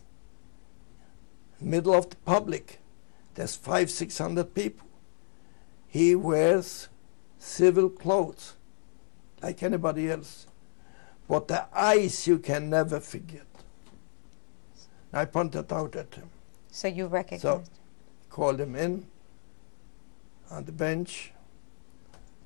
middle of the public. There's 500-600 people. He wears civil clothes like anybody else. But the eyes you can never forget. I pointed out at him. So you recognized? So called him in on the bench,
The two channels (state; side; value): silent; right; 59 dB below the other